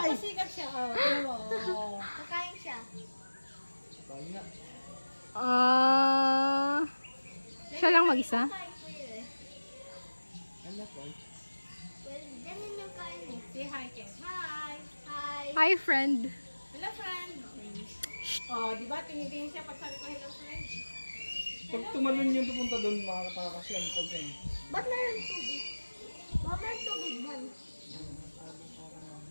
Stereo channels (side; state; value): both; inverted; correlation -1.00